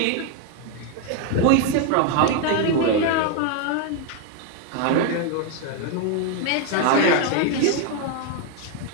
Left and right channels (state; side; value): different; both; correlation 0.01